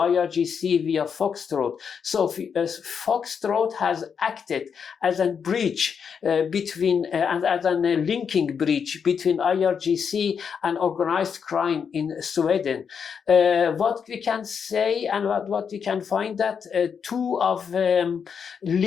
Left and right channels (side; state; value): right; quieter; 6.7 dB